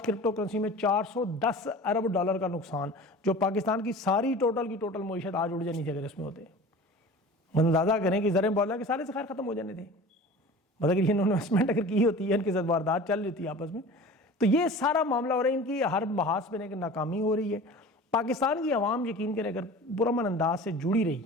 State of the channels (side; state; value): both; normal; correlation 0.39